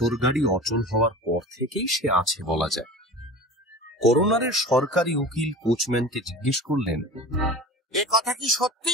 গাড়ি অচল হওয়ার পর থেকেই সে আছে বলা যায়। করোনারের সরকারি উকিল কোচম্যানকে জিজ্ঞেস করলেন, এ কথা কি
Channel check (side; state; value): both; normal; correlation 0.36